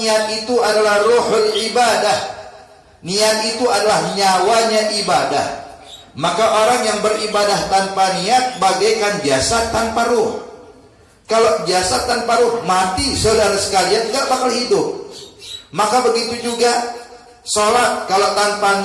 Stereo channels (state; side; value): identical; both; correlation 1.00